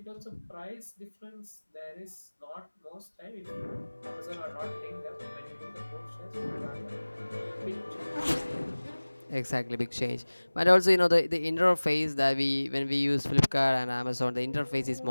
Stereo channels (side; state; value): both; inverted; correlation -1.00